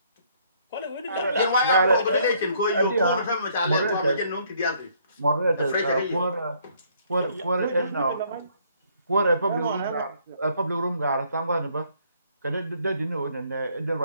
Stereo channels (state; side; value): inverted; both; correlation -0.65